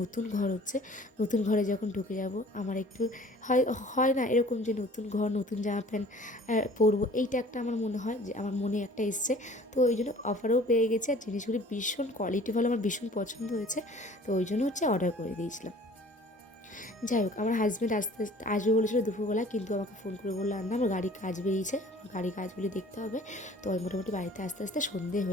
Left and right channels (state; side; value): normal; both; correlation 0.50